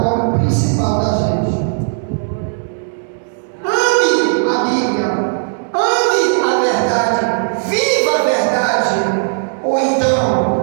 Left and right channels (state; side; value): silent; left; digital silence